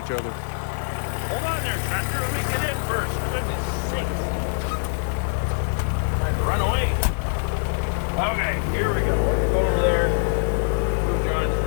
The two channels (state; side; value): silent; right; digital silence